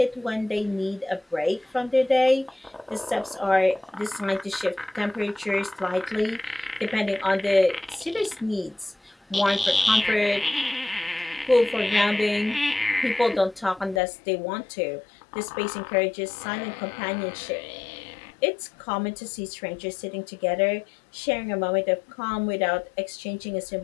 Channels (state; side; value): drops out; right; at 14.0 s